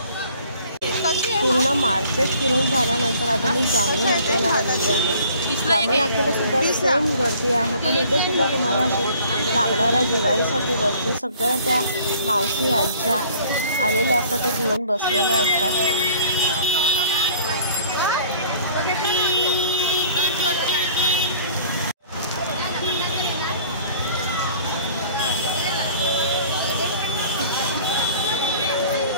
पूर्ण मार्केट फिरून झाल्यानंतर आता मी जांभळी नाक्याला आलेली आहे. जांभळी नाक्याला सुद्धा सेम गर्दी आहे, पण इथे सुद्धा तुम्हाला असे लागणाऱ्या दिवाळीसाठी वस्तू सगळ्या त्या मावशी आज्या आलेल्या असतात, त्या घेऊन बसलेल्या असतात.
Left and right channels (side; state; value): both; inverted; correlation -0.52